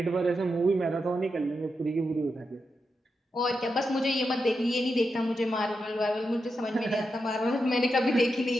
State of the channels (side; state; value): both; normal; correlation 0.87